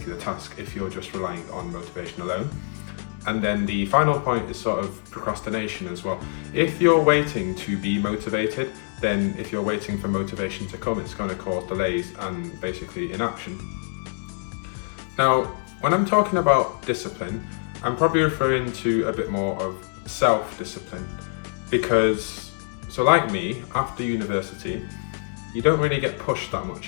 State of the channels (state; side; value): silent; right; digital silence